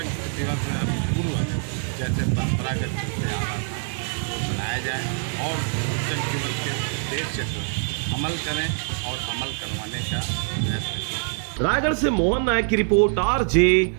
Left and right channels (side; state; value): left; silent; 62 dB below the other